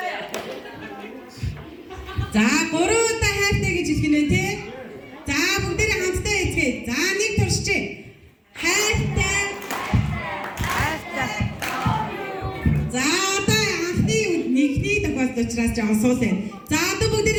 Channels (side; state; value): both; identical; correlation 1.00